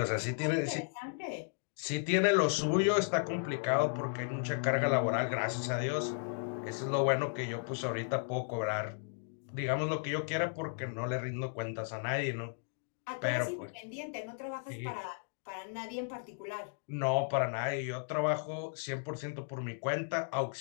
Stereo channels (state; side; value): silent; right; digital silence